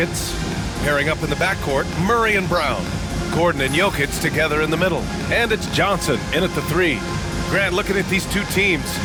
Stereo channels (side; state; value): both; identical; correlation 1.00